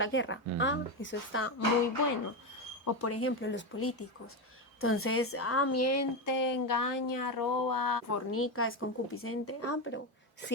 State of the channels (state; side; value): normal; both; correlation 0.12